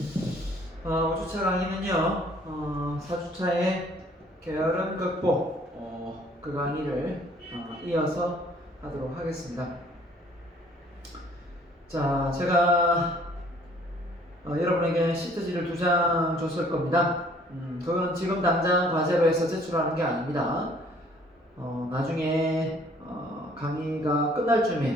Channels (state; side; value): normal; both; correlation 0.58